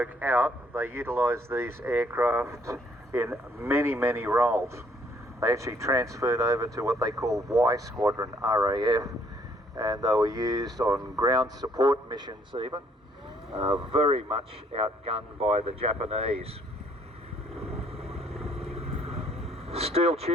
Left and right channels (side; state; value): both; normal; correlation 0.65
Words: out, they utilised these aircraft in many, many roles. They actually transferred over to what they call Y Squadron, RAF, and they were used on ground support missions even, very much outgunned by the Japanese. Steel